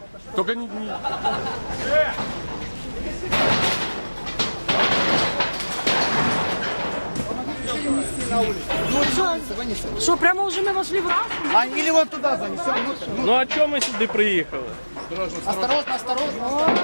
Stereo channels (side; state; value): both; inverted; correlation -1.00